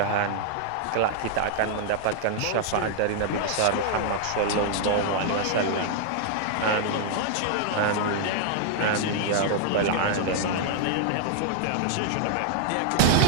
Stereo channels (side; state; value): both; different; correlation -0.01